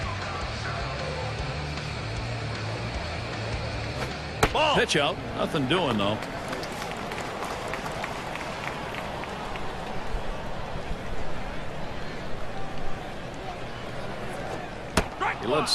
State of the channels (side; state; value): both; identical; correlation 1.00